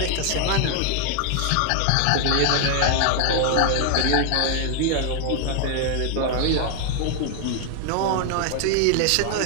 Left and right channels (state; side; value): different; both; correlation 0.00